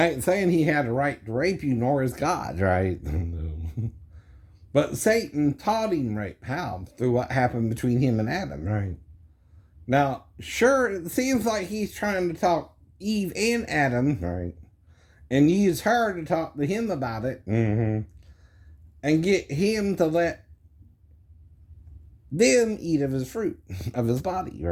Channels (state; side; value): identical; both; correlation 1.00